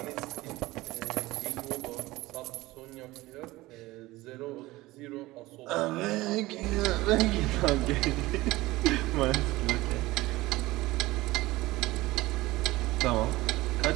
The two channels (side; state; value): left; quieter; 19.0 dB